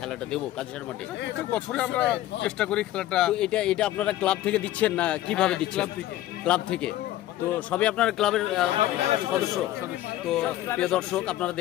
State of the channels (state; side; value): quieter; right; 14.4 dB